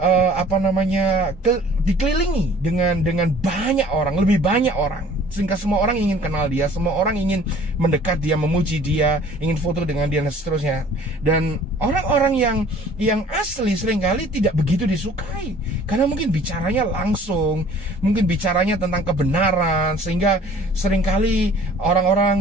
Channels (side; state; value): both; normal; correlation 0.51